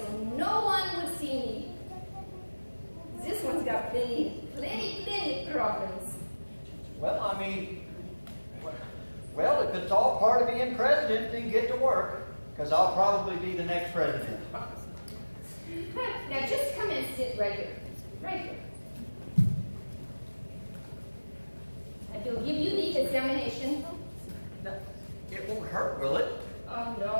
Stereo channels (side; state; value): both; inverted; correlation -1.00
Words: no one would see me. This one's got plenty of problems. Well, I mean, well, if it's all part of being president, then get to work, because I'll probably be the next president. Now just come and sit right here. Right here. And he'll give you the examination. It won't hurt, will it? Oh,